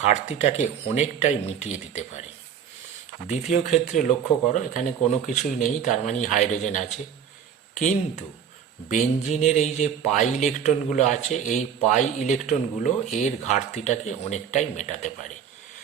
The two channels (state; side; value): quieter; left; 8.1 dB